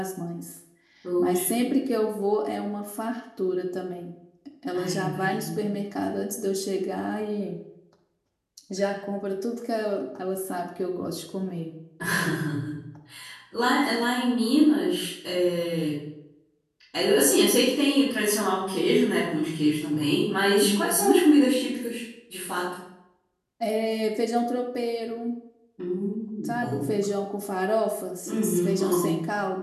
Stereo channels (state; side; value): identical; both; correlation 1.00